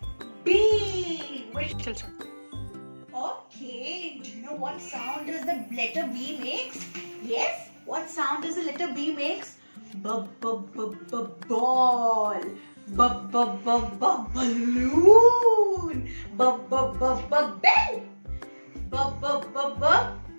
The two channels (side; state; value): both; inverted; correlation -1.00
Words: B. Okay, do you know what sound does the letter B makes? Yes, what sound does the letter B makes? Ball. Balloon. Bell.